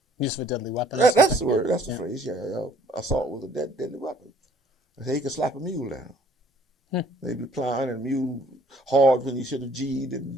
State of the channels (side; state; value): both; normal; correlation 0.58